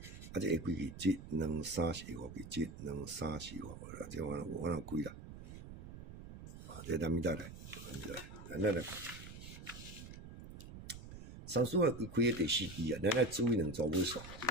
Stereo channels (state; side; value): noise; right; rumble, 13 dB below the sound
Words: 啊，这下几支？1、2、3、4、5支，1、2、3、4、5，这我哪开啦？啊，这咱咪再来，咱来。三数啊，开第4支啊，咱来注意2组尾数，